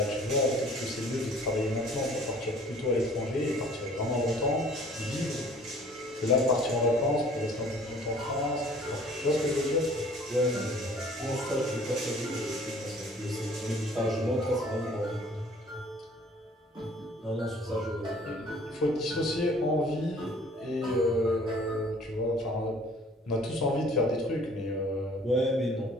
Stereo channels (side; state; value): both; normal; correlation 0.53